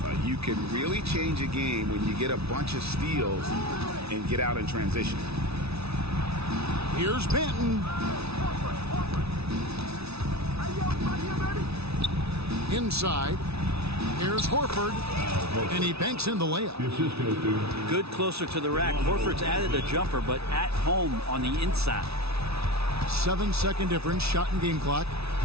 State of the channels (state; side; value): late; left; 0.79 ms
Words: You can really change a game when you get a bunch of steals and get out in transition. Here's Benton. Inside. Here's Horford. And he banks in the layup. Good closer to the rack. Horford's added a jumper, but at home on the inside. 7-second difference, shot and game clock.